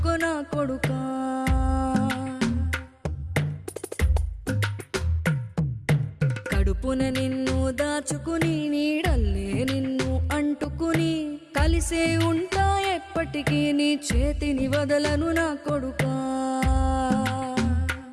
కొడుకా. కడుపున నిన్ను దాచుకుని నీడల్లే నిన్ను అంటుకుని కలిసే ఉంటా ఎప్పటికీ నీ చేతిని వదలను నా కొడుకా.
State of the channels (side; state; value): both; identical; correlation 1.00